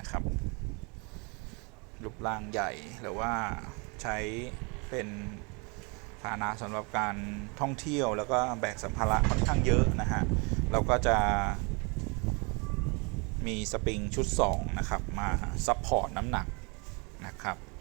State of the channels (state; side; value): quieter; left; 31.4 dB